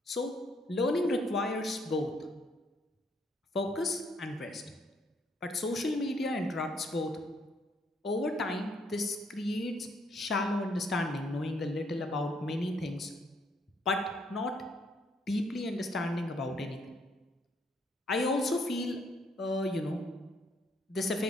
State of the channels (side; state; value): both; normal; correlation 0.70